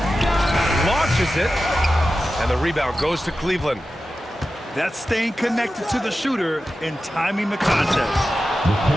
launches it, and the rebound goes to Cleveland. That's staying connected to the shooter and timing the contest.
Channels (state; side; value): normal; both; correlation 0.93